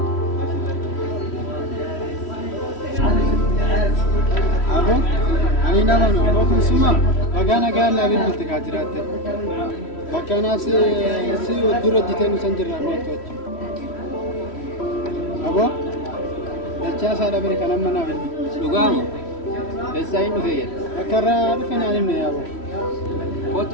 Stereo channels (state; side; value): late; right; 3.1 ms